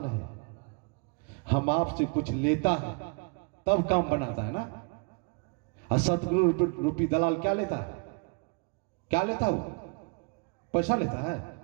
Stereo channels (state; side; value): quieter; left; 32.7 dB